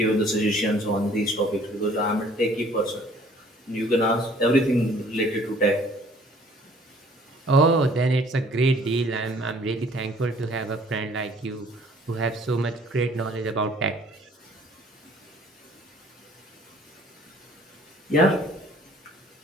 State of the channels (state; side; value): normal; both; correlation 0.56